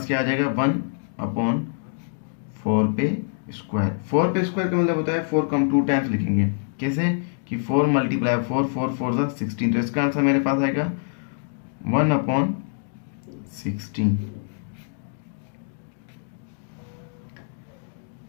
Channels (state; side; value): silent; right; digital silence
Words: क्या आ जाएगा, 1/4 पे स्क्वायर। 4 पे स्क्वायर का मतलब होता है 4 को हम 2 टाइम्स लिखेंगे। कैसे कि 4 मल्टीप्लाई 4, 4 4 ज़ा 16। तो इसका आंसर मेरे पास आएगा 1/16।